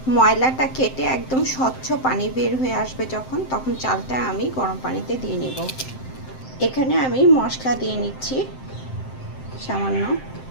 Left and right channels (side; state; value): right; late; 7.7 ms